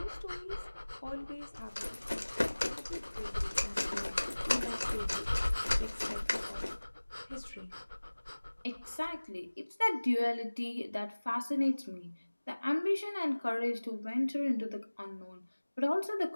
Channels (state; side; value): inverted; both; correlation -1.00